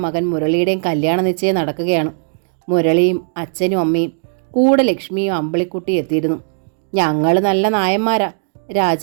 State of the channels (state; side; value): silent; left; digital silence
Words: മകൻ മുരളിയുടെയും കല്യാണ നിശ്ചയം നടക്കുകയാണ്. മുരളിയും അച്ഛനും അമ്മയും കൂടെ ലക്ഷ്മിയും അമ്പിളിക്കുട്ടിയും എത്തിയിരുന്നു. ഞങ്ങൾ നല്ല നായന്മാരാ,